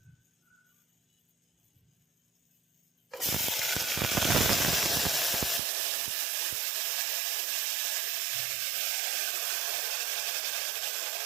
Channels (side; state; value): left; drops out; at 5.6 s